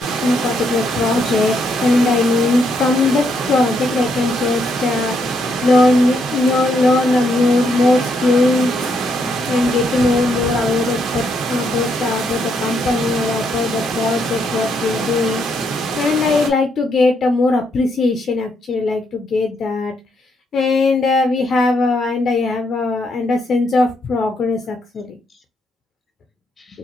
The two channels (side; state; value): both; normal; correlation 0.76